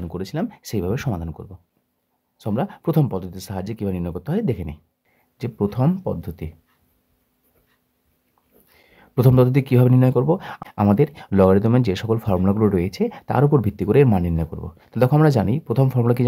করেছিলাম সেইভাবে সমাধান করব। সো আমরা প্রথম পদ্ধতির সাহায্যে কীভাবে নির্ণয় করতে হয় দেখে নিই। যে প্রথম পদ্ধতি কীভাবে নির্ণয় করব, আমাদের লগারিদমের যে সকল ফর্মুলাগুলো রয়েছে তার উপর ভিত্তি করে এর মান নির্ণয় করব। তো দেখো আমরা জানি প্রথম ফর্মুলা কি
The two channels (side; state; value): both; identical; correlation 1.00